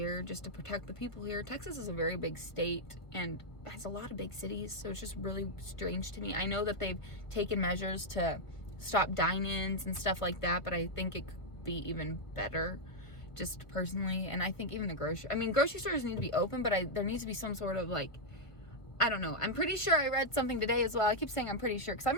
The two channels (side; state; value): right; late; 1.2 ms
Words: just to protect the people here. Texas is a very big state and has a lot of big cities, so it's just really strange to me. I know that they've taken measures to stop dine-ins and stuff like that, but I think it could be even better, just personally. And I think even the grocery stores need to be open, but there needs to be some sort of like, I don't know. I'm pretty sure I read something today as well. I keep saying I'm pretty sure because I'm